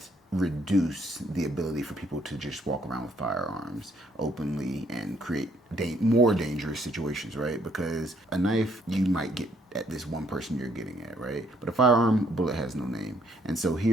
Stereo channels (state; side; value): normal; both; correlation 0.68